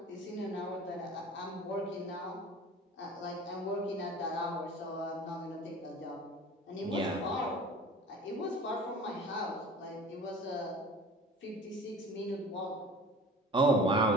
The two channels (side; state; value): both; normal; correlation 0.41